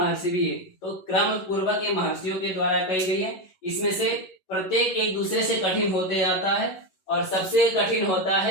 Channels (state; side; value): late; right; 11 ms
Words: भी। तो क्रम पूर्वक ये महर्षियों के द्वारा कही गई है। इसमें से प्रत्येक एक दूसरे से कठिन होते जाता है और सबसे कठिन होता